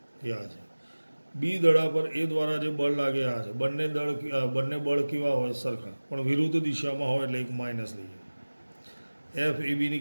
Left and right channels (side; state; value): both; inverted; correlation -1.00